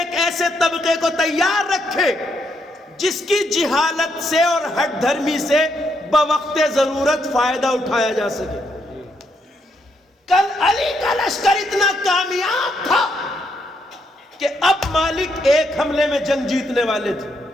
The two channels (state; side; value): normal; both; correlation 0.77